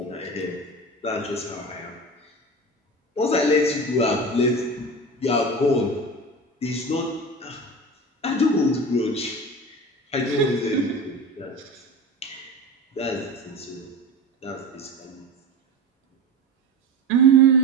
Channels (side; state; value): both; normal; correlation 0.30